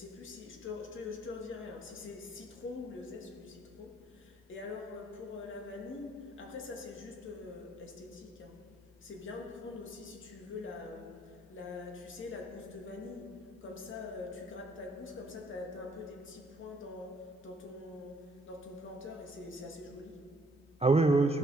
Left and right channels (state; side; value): normal; both; correlation 0.65